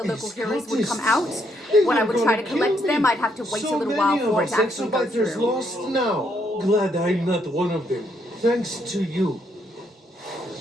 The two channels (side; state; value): both; normal; correlation 0.73